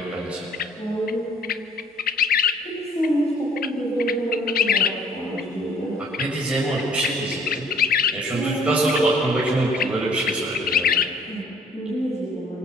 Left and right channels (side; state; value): both; normal; correlation 0.56